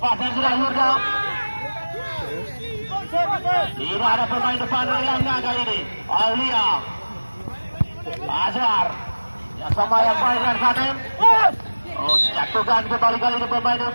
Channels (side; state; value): both; inverted; correlation -1.00